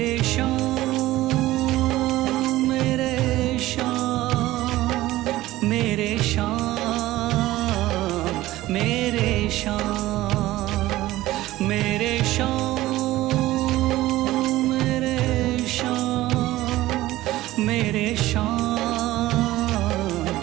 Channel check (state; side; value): quieter; left; 16.5 dB